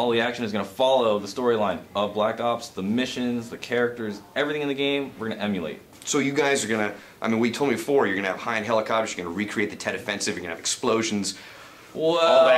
the action is going to follow the storyline of Black Ops, the missions, the characters, everything in the game, we're going to emulate. So you guys are going to, I mean, we told me before, you're going to have high-end helicopters, you're going to recreate the Tet Offensive, you're going to have explosions, well, all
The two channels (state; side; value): identical; both; correlation 1.00